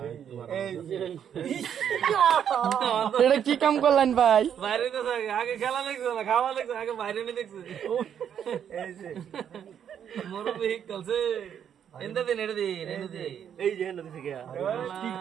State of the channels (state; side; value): quieter; left; 8.8 dB